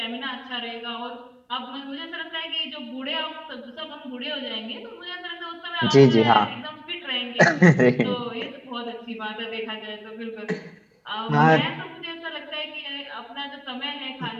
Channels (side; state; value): both; identical; correlation 1.00